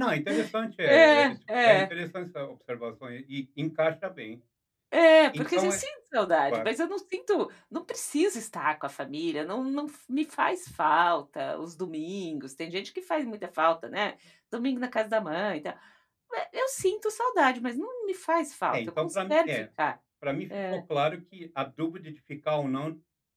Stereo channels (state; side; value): identical; both; correlation 1.00